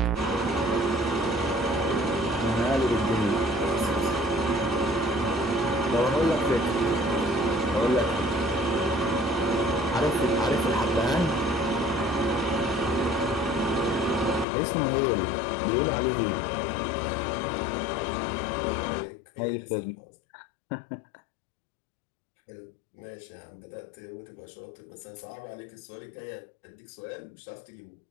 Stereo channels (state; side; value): drops out; right; at 14.5 s